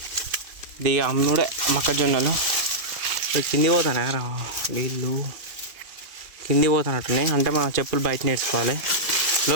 ఇది అమ్ముడే మొక్కజొన్నలు కింది పోతానే వీళ్ళు కింది పోతానట్టున్నాయి. అంటే మనం చెప్పులు బయట నేర్చుకోవాలి.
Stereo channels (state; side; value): late; left; 2.6 ms